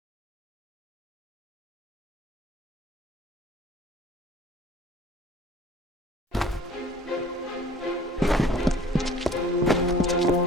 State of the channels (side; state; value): both; normal; correlation 0.50